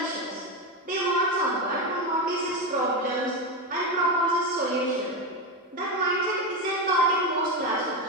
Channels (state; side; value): normal; both; correlation 0.13